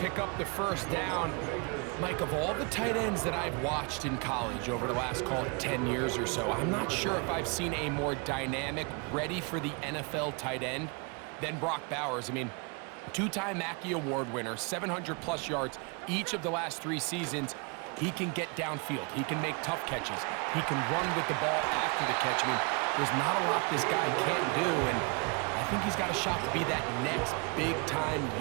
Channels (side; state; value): left; quieter; 32.8 dB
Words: up the first down. Mike, of all the tight ends that I've watched in college over the last, call it 10 years or so, I'm not sure if I've seen a more dynamic, ready for the NFL tight end than Brock Bowers. I mean, 2-time Mackey Award winner, 700-plus yards each of the last 3 seasons. He can get downfield. He can make tough catches. He can run with the ball after the catch. I mean, there's not a lot this guy can't do, and I think he's got a shot to be that next big-time,